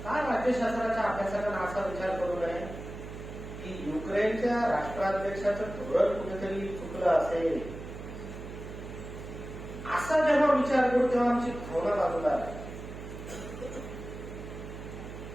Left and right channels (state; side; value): noise; right; hum, 11 dB below the sound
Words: काय राज्यशास्त्राच्या अभ्यासकांना असा विचार करू नये की युक्रेनच्या राष्ट्राध्यक्षाचं धोरण कुठेतरी चुकलं असेल. असा जेव्हा विचार करू तेव्हा आमची भावना बाजूला आहे.